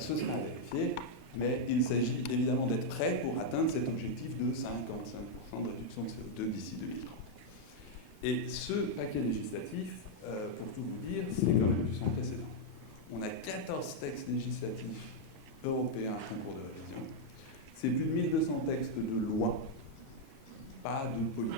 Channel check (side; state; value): both; normal; correlation -0.02